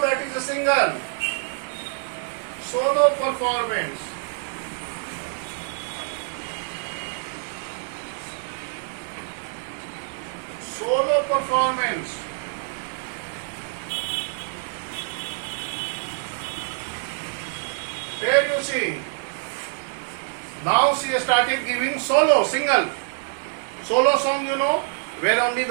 that is a singer. Solo performance. Solo performance. Here you see. Now she started giving solo, single. Solo song, where only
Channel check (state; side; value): silent; left; 59 dB below the other